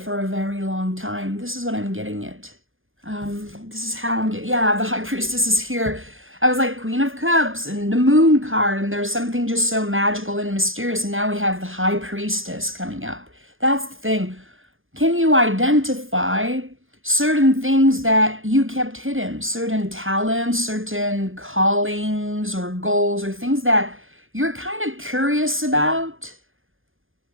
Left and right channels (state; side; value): late; left; 0.59 ms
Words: a very long time. This is what I'm getting at. This is how I'm getting, the High Priestess is here. I was like Queen of Cups and the Moon card, and there's something just so magical and mysterious. And now we have the High Priestess coming up. That's the thing. Can you identify certain things that you kept hidden, certain talents, certain callings or goals or things that you're kind of curious about,